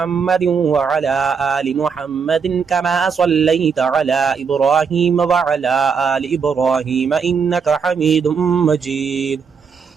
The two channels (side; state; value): left; quieter; 6.0 dB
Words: وعلى آل محمد كما صليت على إبراهيم وعلى آل إبراهيم إنك حميد مجيد.